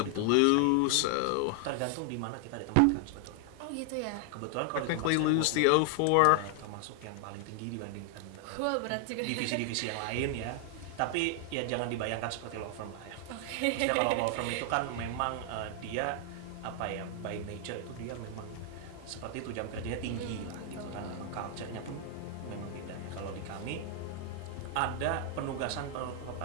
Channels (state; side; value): different; both; correlation 0.00